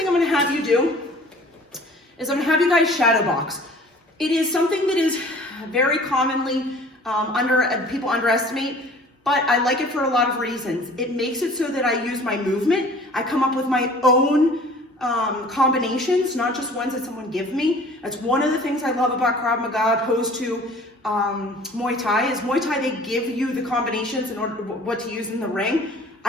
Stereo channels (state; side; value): normal; both; correlation 0.48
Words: I'm gonna have you do is I'm gonna have you guys shadow box. It is something that is very commonly people underestimate, but I like it for a lot of reasons. It makes it so that I use my movement. I come up with my own combinations, not just ones that someone gives me. That's one of the things I love about Krav Maga opposed to Muay Thai is Muay Thai, they give you the combinations in order what to use in the ring.